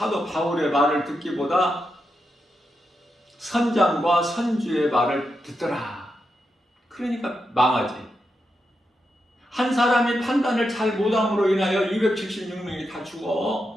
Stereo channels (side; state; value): both; normal; correlation 0.86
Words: 바울의 말을 듣기보다 선장과 선주의 말을 듣더라. 그러니까 망하지. 한 사람이 판단을 잘 못함으로 인하여 276명이 다